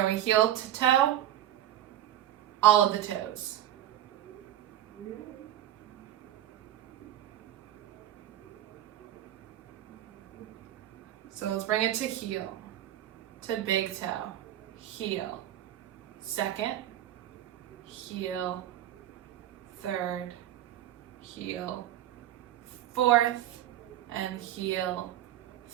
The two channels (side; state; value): left; quieter; 12.5 dB